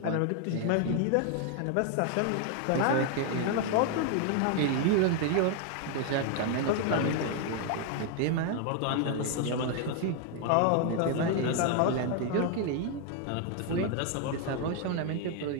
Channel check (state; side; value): different; both; correlation 0.00